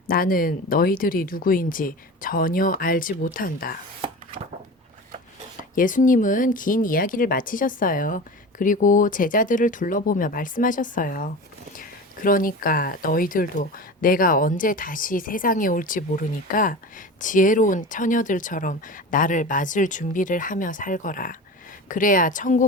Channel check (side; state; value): both; normal; correlation 0.32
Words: 나는 너희들이 누구인지 전혀 알지 못한다. 예수님은 긴 이야기를 마치셨어요. 그리고 제자들을 둘러보며 말씀하셨어요. 그러니까 너희들도 내가 언제 다시 세상에 올지 모르니까 지혜로운 처녀들처럼 나를 맞을 준비를 하며 살거라. 그래야